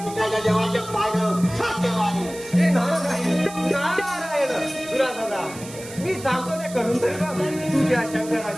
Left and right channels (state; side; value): noise; right; hiss, 15 dB below the sound